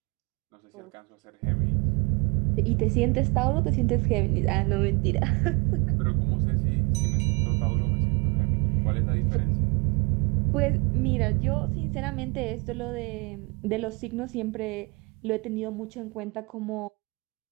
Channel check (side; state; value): left; quieter; 28.3 dB